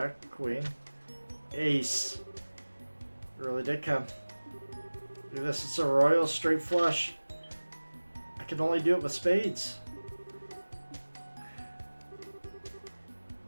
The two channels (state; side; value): inverted; both; correlation -1.00